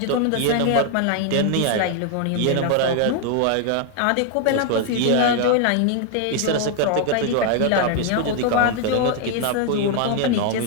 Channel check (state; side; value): different; both; correlation 0.00